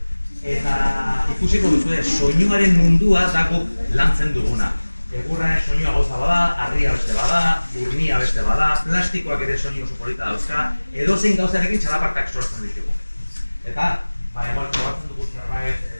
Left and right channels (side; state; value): both; inverted; correlation -1.00